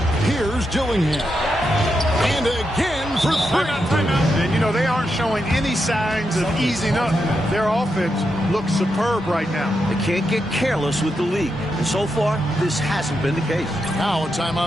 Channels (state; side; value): normal; both; correlation 0.85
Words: Here's Dillingham. And again for 3. And, you know, they aren't showing any signs of easing up. Their offense looks superb right now. They can't get careless with the league. And so far, this hasn't been the case. Now a